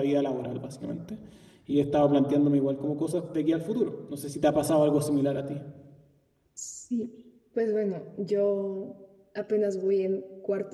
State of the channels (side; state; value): both; identical; correlation 1.00